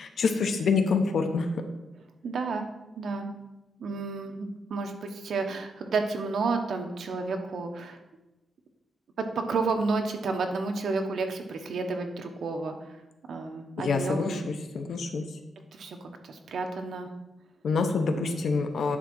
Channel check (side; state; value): both; normal; correlation 0.76